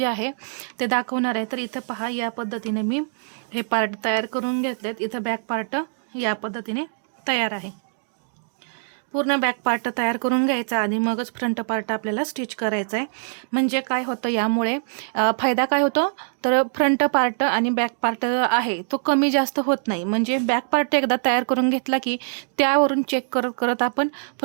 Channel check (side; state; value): left; silent; digital silence